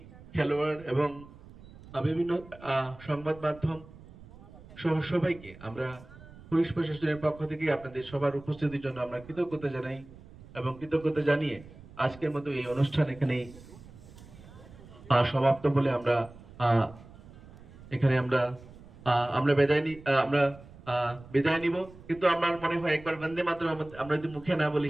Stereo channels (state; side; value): noise; right; rumble, 20 dB below the sound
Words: খেলোয়াড় এবং বিভিন্ন সংবাদ মাধ্যম সহ সবাইকে আমরা পুলিশ প্রশাসনের পক্ষ থেকে আপনাদের সবার উপস্থিতির জন্য আমরা কৃতজ্ঞতা জানাই এবং কৃতজ্ঞতা জানিয়ে আজকের মতো এই অনুষ্ঠান এখানেই সমাপ্ত বলে আমরা এখানে আমরা বিদায় নিব। কিন্তু আমার মনে হয় একবার বন্দে মাতরম আমরা যদি মুখে না বলি